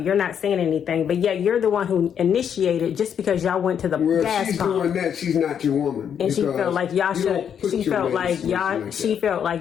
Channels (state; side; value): quieter; right; 8.3 dB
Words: not saying anything, but yet you're the one who initiated just because y'all went to the gas she's pump. doing that. She's not your woman. And she felt like y'all should. She felt like